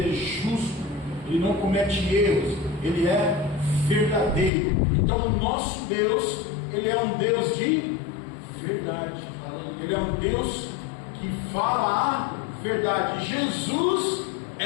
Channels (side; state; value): right; drops out; at 4.5 s